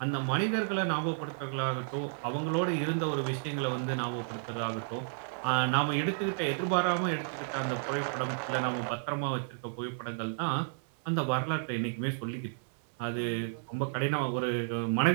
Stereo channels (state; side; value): silent; left; 57 dB below the other